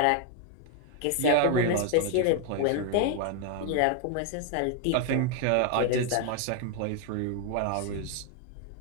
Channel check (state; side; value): different; both; correlation 0.01